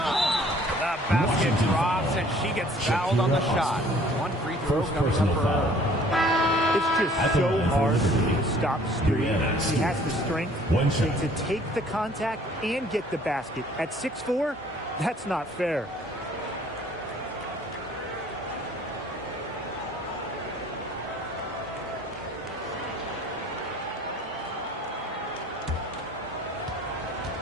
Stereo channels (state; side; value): normal; both; correlation 0.55